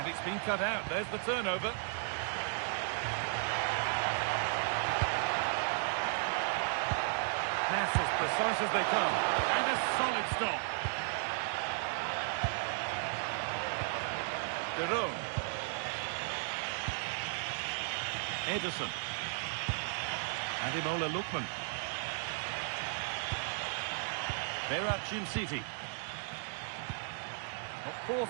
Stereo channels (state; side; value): silent; left; digital silence